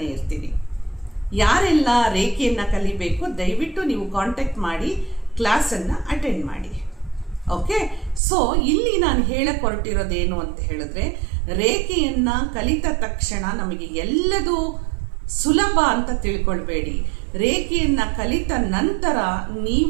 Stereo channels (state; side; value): drops out; left; at 8.2 s